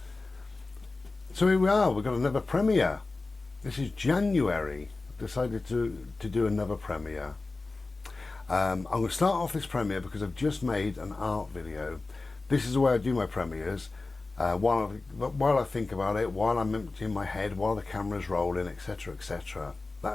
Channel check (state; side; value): quieter; right; 3.5 dB